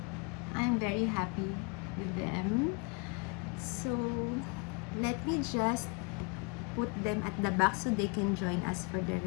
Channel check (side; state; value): right; quieter; 31.9 dB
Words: I'm very happy with them. So let me just put them at the back so they can join us for the